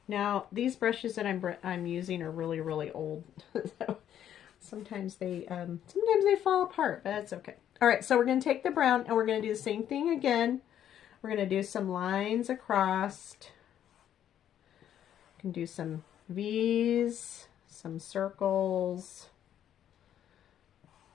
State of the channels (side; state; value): right; quieter; 10.4 dB